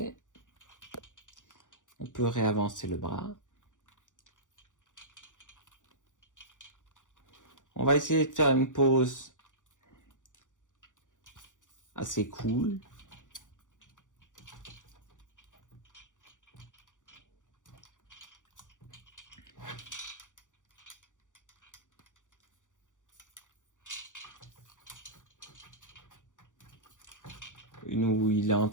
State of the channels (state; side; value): late; right; 0.87 ms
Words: On peut réavancer le bras. On va essayer de faire une pause assez cool. Une où il est en